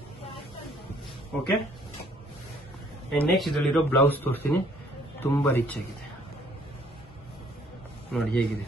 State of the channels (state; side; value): normal; both; correlation 0.61